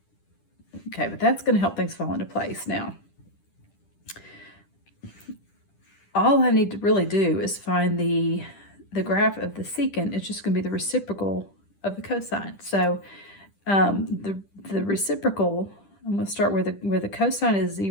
Okay, but that's going to help things fall into place. Now, all I need to really do is find the graph of the secant. It's just going to be the reciprocal of the cosine. So the reciprocal, I'm going to start where the cosine is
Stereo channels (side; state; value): right; late; 10 ms